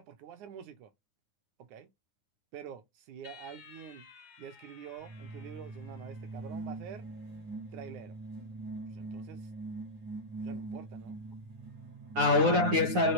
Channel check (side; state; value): left; late; 9.7 ms